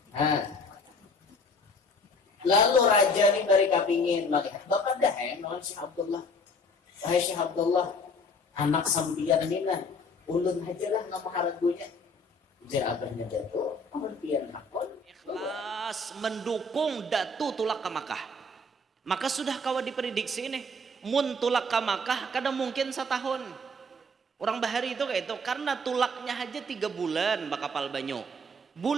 Lalu raja nih dari kapingin melihat bapak dah nawan Syekh Abdullah. Wahai Syekh Abdullah, anak sampian ini nah ulun aja lah nama haragunya. Jar abahnya jatuh, kemudian hakon ikhlas mendukung datu tulak ke Makkah. Maka sudah kawa diprediksi ini mun tulak ke Makkah kadang mungkin setahun. Orang bahari itu kayak itu karena tulaknya aja 3 bulan bakapal banyu.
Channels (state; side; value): normal; both; correlation 0.51